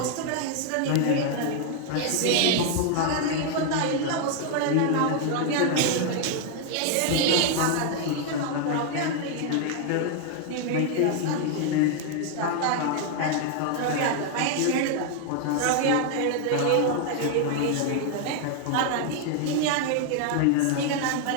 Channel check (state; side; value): different; both; correlation 0.00